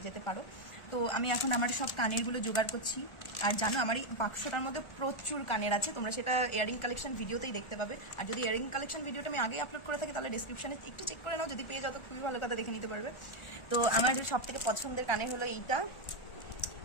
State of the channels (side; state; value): right; late; 1.4 ms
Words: যেতে পারো। তো আমি এখন আমার সব কানেরগুলো জোগাড় করছি। আর জানো, আমার এই বাক্সটার মধ্যে প্রচুর কানের আছে, তোমরা সেটা ইয়াররিং কালেকশন ভিডিওতেই দেখতে পাবে। আর যদি ইয়াররিং কালেকশন ভিডিওটা আমি আগেই আপলোড করে থাকি তাহলে ডিসক্রিপশনে একটু চেক করে নাও, যদি পেয়ে যাও তো খুবই ভালো কথা, দেখে নিতে পারবে। তো আমার সব থেকে পছন্দের কানের হলো এইটা।